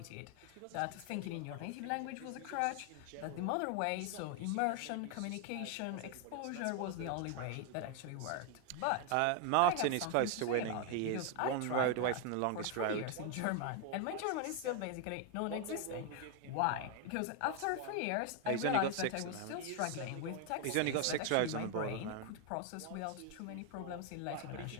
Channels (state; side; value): different; both; correlation 0.01